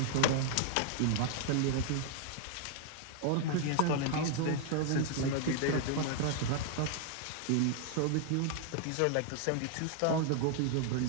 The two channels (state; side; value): different; both; correlation 0.00